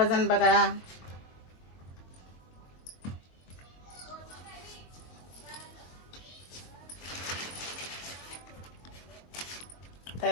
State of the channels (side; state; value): right; late; 22 ms